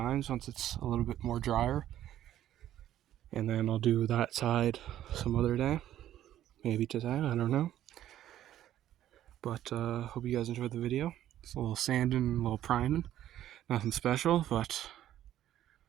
once it's a little bit more drier. And then I'll do that side some other day. Maybe today, I don't know. But hope you guys enjoyed the video. It's a little sanding, a little priming. Nothing special, but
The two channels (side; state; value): left; quieter; 12.3 dB